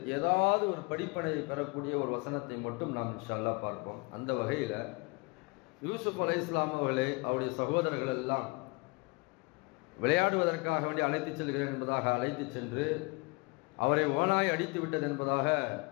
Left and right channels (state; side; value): quieter; right; 28.0 dB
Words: ஏதாவது ஒரு படிப்பனை பெறக்கூடிய ஒரு வசனத்தை மட்டும் நாம் இன்ஷா அல்லாஹ் பார்ப்போம். அந்த வகையில யூசுப் அலைஹிஸ்ஸலாம் அவர்களை அவருடைய சகோதரர்கள் எல்லாம் விளையாடுவதற்காக வேண்டி அழைத்து செல்கிறேன் என்பதாக அழைத்து சென்று அவரை ஓனாய் அடித்து விட்டது என்பதாக